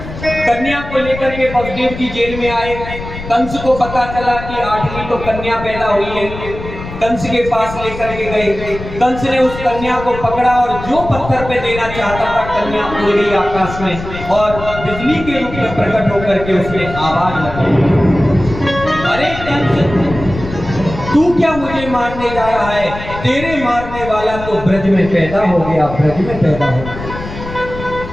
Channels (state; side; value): noise; left; rumble, 10 dB below the sound